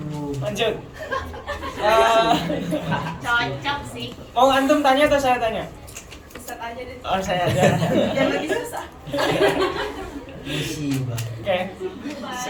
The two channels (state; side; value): identical; both; correlation 1.00